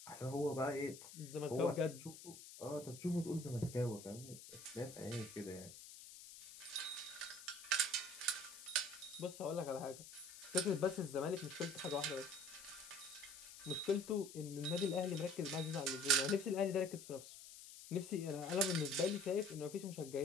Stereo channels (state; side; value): noise; left; hiss, 14 dB below the sound